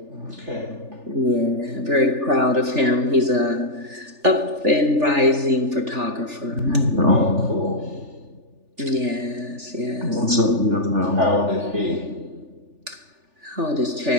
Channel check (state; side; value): late; left; 3.4 ms